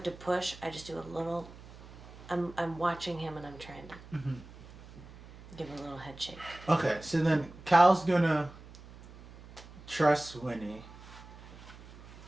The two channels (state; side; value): noise; right; hum, 18 dB below the sound